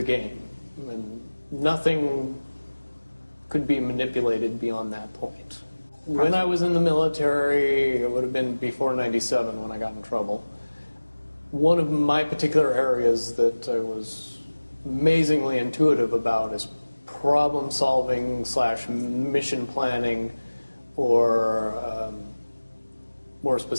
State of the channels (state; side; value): inverted; both; correlation -1.00